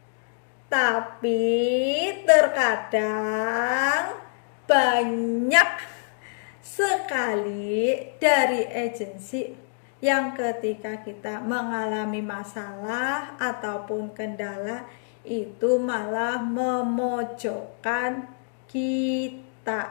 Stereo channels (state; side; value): silent; right; digital silence